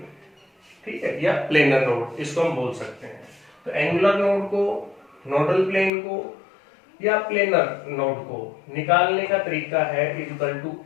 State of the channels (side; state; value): right; drops out; at 5.9 s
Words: ठीक है, या प्लेनर नोड, इसको हम बोल सकते हैं। तो एंगुलर नोड को, नोडल प्लेन को या प्लेनर नोड को निकालने का तरीका है इक्वल टू